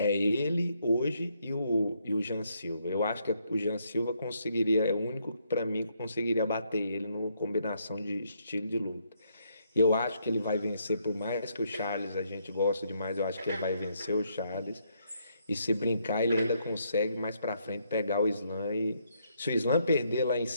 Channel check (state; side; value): inverted; both; correlation -0.74